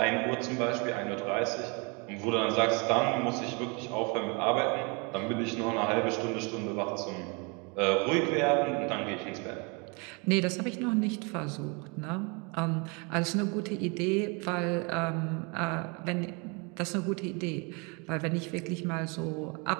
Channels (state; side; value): quieter; left; 31.4 dB